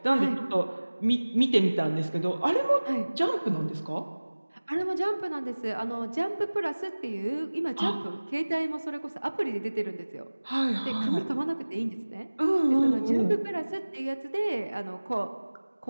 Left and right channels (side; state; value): both; inverted; correlation -1.00